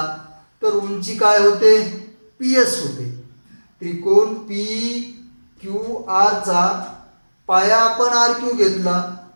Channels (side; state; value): both; inverted; correlation -1.00